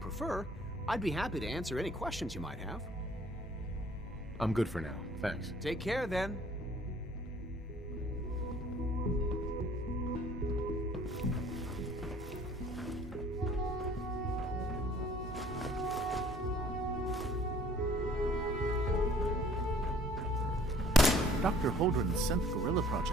I'd be happy to answer any questions you might have. I'm good for now, thanks. Take care, then. Dr. Holdren's synth gorilla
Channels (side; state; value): both; normal; correlation 0.56